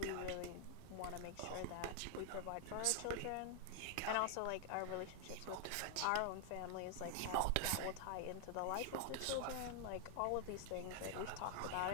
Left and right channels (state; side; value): different; both; correlation 0.00